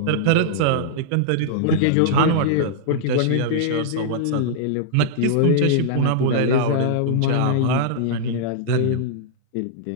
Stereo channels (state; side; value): different; both; correlation -0.02